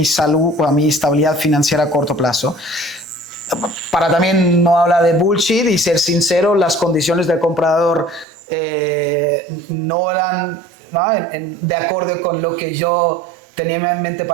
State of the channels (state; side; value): drops out; left; at 8.2 s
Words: salud o mi estabilidad financiera a corto plazo. Para también no hablar de bullshit y ser sincero, las condiciones del comprador no eran, ¿no? de acuerdo con lo que yo tenía en mente